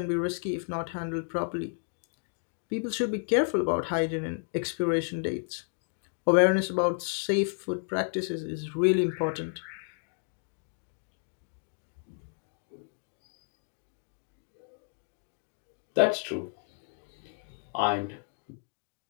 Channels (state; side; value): silent; right; 57 dB below the other